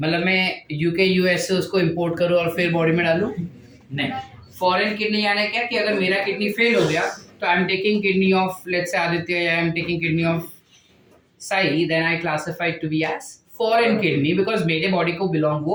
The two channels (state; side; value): identical; both; correlation 1.00